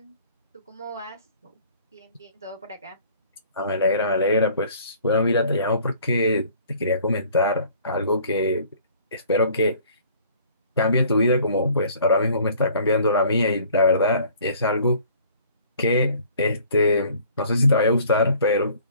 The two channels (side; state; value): both; inverted; correlation -0.54